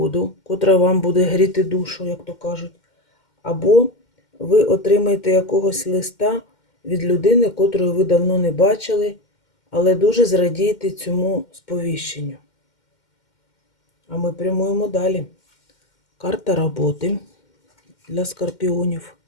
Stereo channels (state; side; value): late; right; 2.1 ms